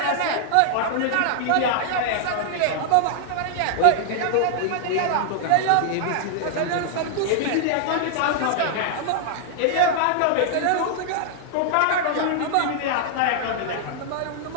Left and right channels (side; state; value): both; different; correlation -0.01